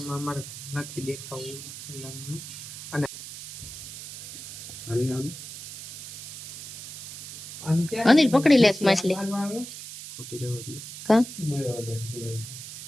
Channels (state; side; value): noise; right; hiss, 11 dB below the sound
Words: અમારે નથી દેખાવું. અને અનિલ પકડી લે માછલી. કા